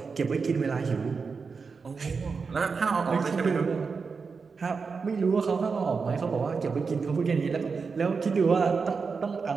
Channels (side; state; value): left; quieter; 5.0 dB